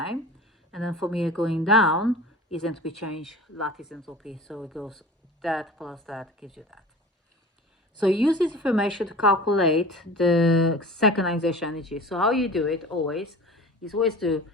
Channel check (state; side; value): normal; both; correlation 0.38